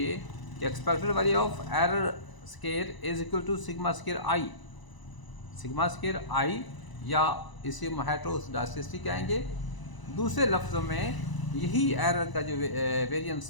कि expected value of error square is equal to sigma square i या इसे हेट्रोस्टासिटी कहेंगे। दूसरे लफ्ज़ों में यही एरर का जो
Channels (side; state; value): right; late; 1.0 ms